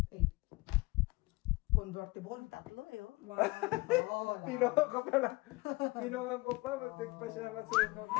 8. Convertible. Tatlo eh, oh. Wow. Oo, Pinungan ko pala. Pinungan ko pa. Matik pa siya masungog.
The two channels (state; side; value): quieter; right; 23.4 dB